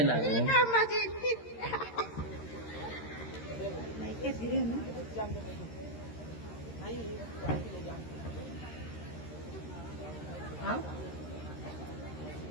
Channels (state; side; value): late; right; 13 ms